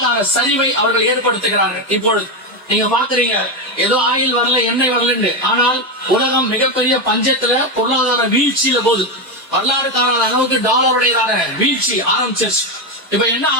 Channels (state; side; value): normal; both; correlation 0.10